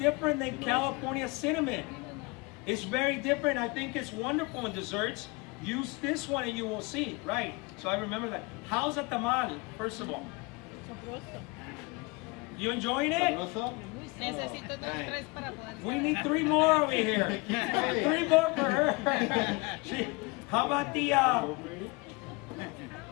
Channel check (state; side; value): quieter; right; 26.7 dB